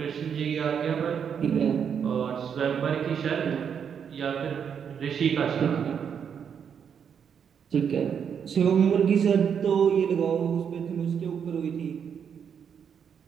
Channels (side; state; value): left; quieter; 7.5 dB